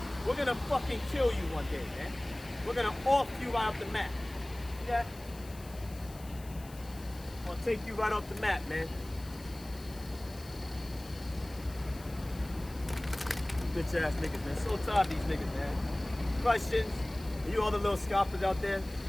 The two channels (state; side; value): noise; left; hiss, 20 dB below the sound